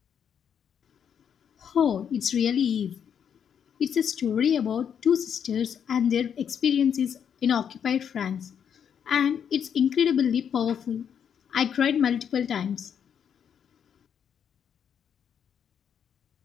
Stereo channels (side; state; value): right; quieter; 8.1 dB